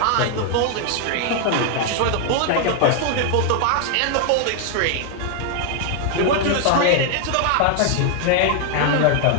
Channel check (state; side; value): different; both; correlation 0.00